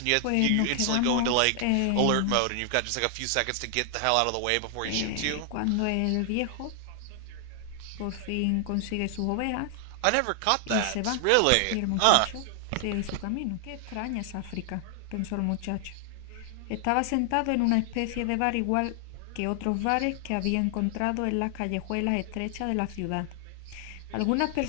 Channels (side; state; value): both; different; correlation 0.00